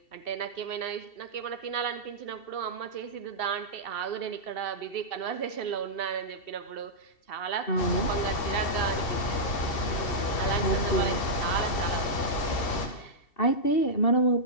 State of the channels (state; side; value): late; right; 2.7 ms